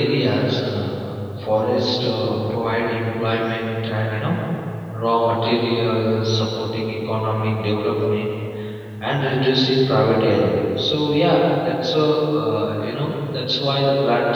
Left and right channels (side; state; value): both; identical; correlation 1.00